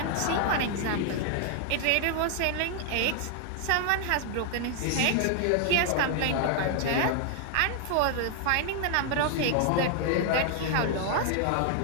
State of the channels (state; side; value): different; both; correlation 0.00